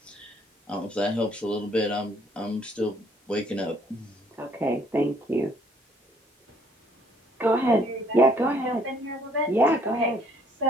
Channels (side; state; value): both; normal; correlation 0.61